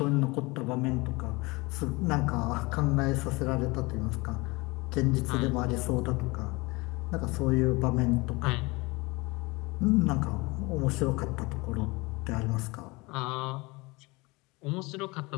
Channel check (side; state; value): right; quieter; 24.4 dB